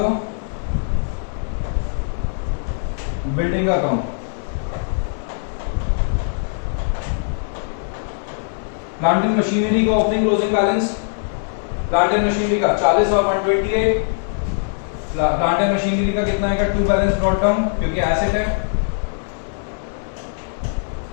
बिल्डिंग का अकाउंट। प्लांट एंड मशीनरी का opening closing balance, plant and machinery का 40 और 128। प्लांट एंड मशीनरी का कितना आएगा, टू बैलेंस ब्रॉड डाउन क्योंकि एसेट है।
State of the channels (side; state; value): right; silent; digital silence